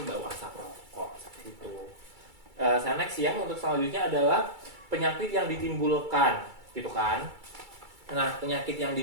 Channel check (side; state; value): left; late; 2.3 ms